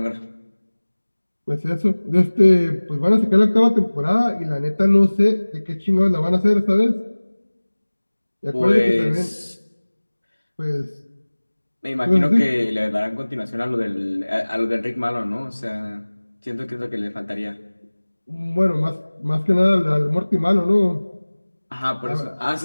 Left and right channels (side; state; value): both; inverted; correlation -1.00